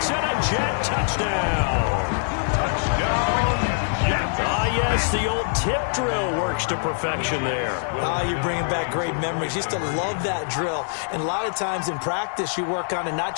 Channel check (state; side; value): silent; right; digital silence